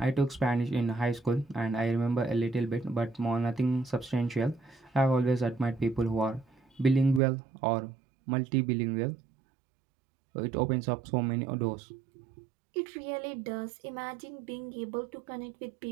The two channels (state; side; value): drops out; left; at 7.2 s